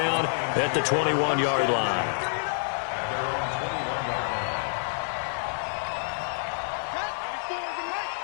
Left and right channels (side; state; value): right; silent; 60 dB below the other